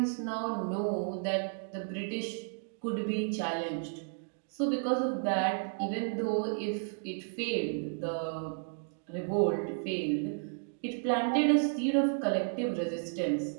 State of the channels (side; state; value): left; silent; digital silence